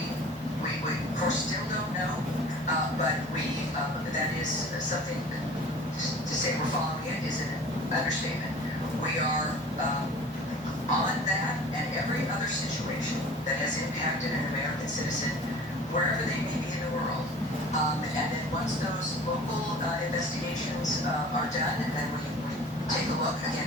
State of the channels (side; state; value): both; normal; correlation 0.43